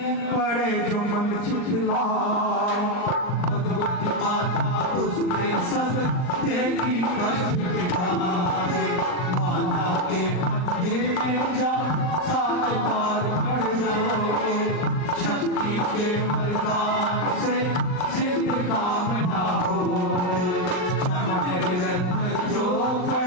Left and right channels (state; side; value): late; right; 39 ms